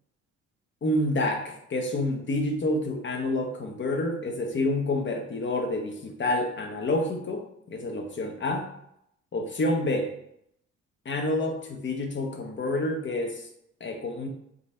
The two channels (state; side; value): normal; both; correlation 0.30